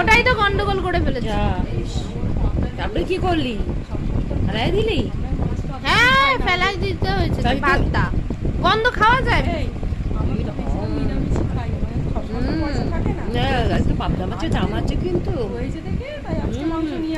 তো গন্ডগোল করে ফেলেছে। তারপরে কি করলি? ফেলাই দিলি? হ্যাঁ, ফেলাই দিতে হয়েছে পাবদা। গন্ধ খাওয়া যায়? একটু পাবদা মাছের দাম আছে কিন্তু।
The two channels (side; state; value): both; identical; correlation 1.00